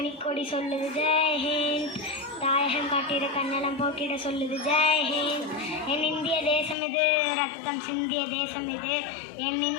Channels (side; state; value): right; drops out; at 6.8 s